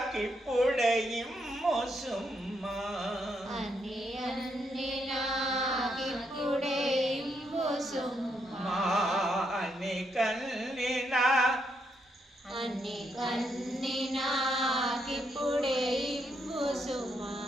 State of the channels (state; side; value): normal; both; correlation 0.78